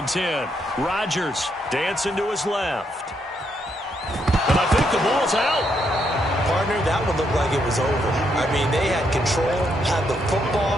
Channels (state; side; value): normal; both; correlation 0.76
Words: 10. Rodgers dancing to his left. And I think the ball's out. Partner, that one looked like it was over. I mean, they had control, had the